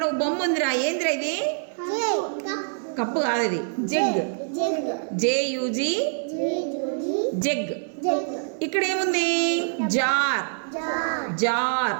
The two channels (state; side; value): silent; left; 56 dB below the other